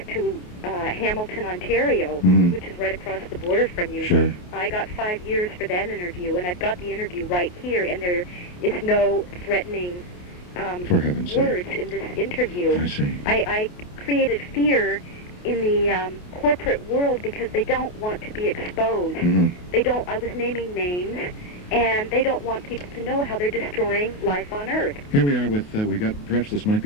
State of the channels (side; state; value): right; late; 28 ms